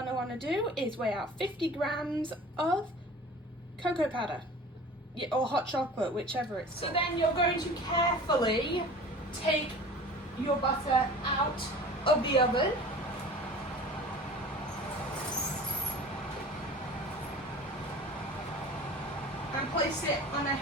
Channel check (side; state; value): both; normal; correlation 0.41